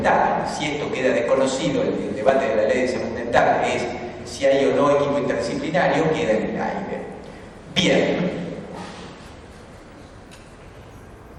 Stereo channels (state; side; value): identical; both; correlation 1.00